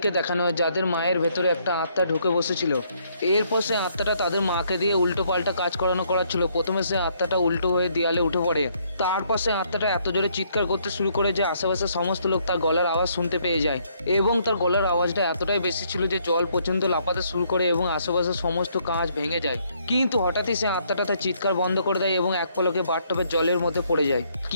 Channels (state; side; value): inverted; both; correlation -0.69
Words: দেখানো হয় যাদের মায়ের ভেতরে একটা আত্মা ঢুকে বসেছিল। এরপর সে আত্মাটা তাদের মাকে দিয়ে উল্টো পাল্টা কাজ করাচ্ছিল। প্রথমে সে আত্মাটা উল্টো হয়ে দেয়ালে উঠে পড়ে। তারপর সে আত্মাটা এত জোরে চিৎকার করতে শুরু করে যে আশেপাশের সমস্ত লোক তার গলার আওয়াজ শুনতে পেয়ে যায়, এবং তার গলার আওয়াজটা এতটাই বেশি ছিল যে জল পর্যন্ত লাফাতে শুরু করে এবং আশেপাশের সমস্ত কাঁচ ভেঙে যায়। কিন্তু হঠাৎই সে আত্মাটা তার চিৎকার বন্ধ করে দেয় এবং এক পলকে বাথটবের জলের মধ্যে পড়ে যায়।